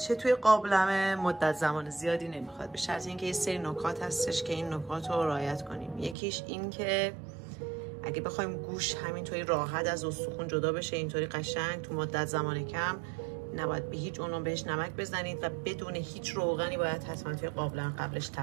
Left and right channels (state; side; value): drops out; left; at 6.2 s